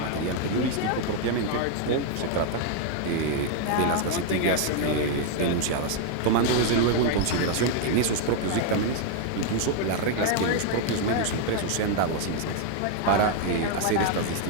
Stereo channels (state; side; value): different; both; correlation 0.00